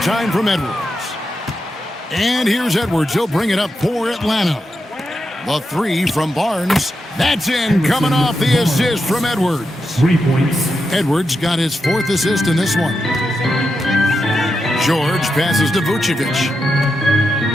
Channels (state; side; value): normal; both; correlation 0.87